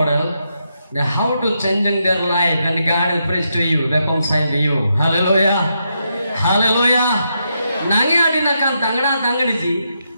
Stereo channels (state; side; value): inverted; both; correlation -0.82